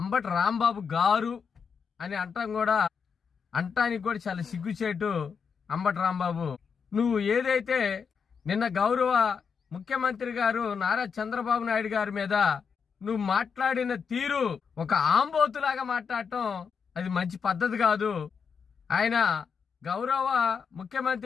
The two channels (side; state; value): right; quieter; 6.2 dB